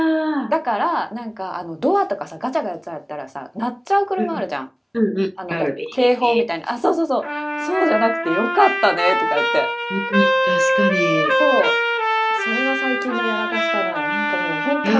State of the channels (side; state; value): both; identical; correlation 1.00